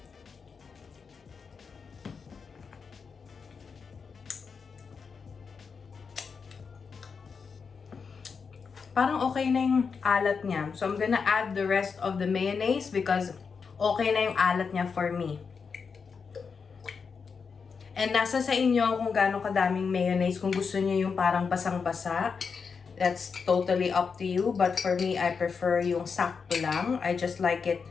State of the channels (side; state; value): right; quieter; 5.6 dB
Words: Parang okay na yung alat niya. So, I'm gonna add the rest of the mayonnaise because okay na yung alat niya for me. And nasa sa inyo kung gaano kadaming mayonnaise. Kung gusto niyo yung parang basang-basa, that's totally up to you. But for me, I prefer yung sakto lang. I just like it.